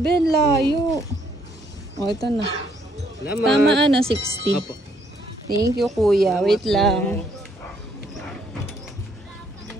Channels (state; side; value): normal; both; correlation 0.69